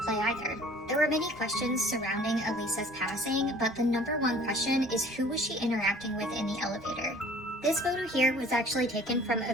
play either. There were many questions surrounding Elisa's passing, but the number one question is who was she interacting with in the elevator? This photo here was actually taken from a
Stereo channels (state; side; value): normal; both; correlation 0.51